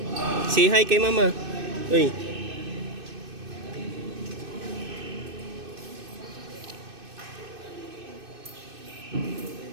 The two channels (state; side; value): late; left; 2.6 ms